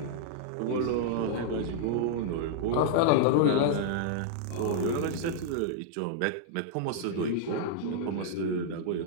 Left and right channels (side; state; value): both; different; correlation -0.01